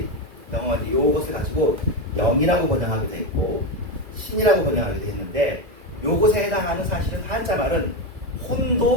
영어가 이것을 가지고 영이라고 번역하기도 했고 신이라고 번역하기도 했는데 요것에 해당하는 사실은 한자 말은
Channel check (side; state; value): left; late; 2.0 ms